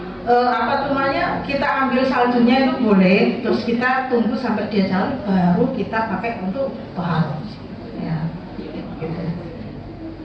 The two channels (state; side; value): identical; both; correlation 1.00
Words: apa namanya, kita ambil saljunya itu boleh, terus kita tunggu sampai dia cair, baru kita pakai untuk taharah. Ya, gitu.